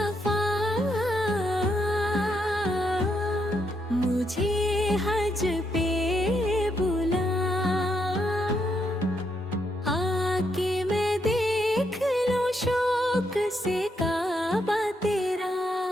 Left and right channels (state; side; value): normal; both; correlation 0.78